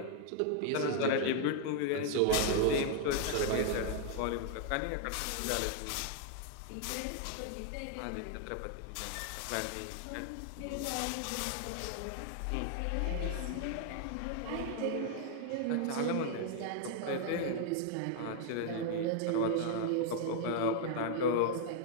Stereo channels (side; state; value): both; different; correlation 0.00